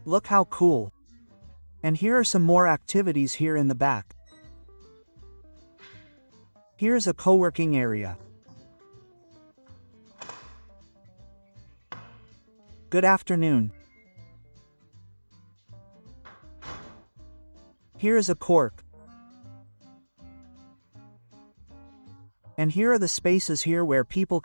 Look how cool. And here are some more activities here in the back. Here's a co-working area. Good afternoon. Here is a cork. And here are the spaces here where people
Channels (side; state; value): both; inverted; correlation -1.00